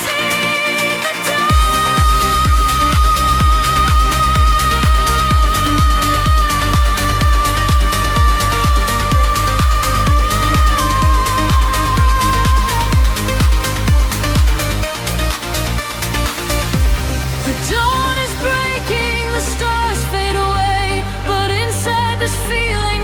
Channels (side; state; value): both; identical; correlation 1.00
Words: the dawn is breaking, the stars fade away, but inside this feeling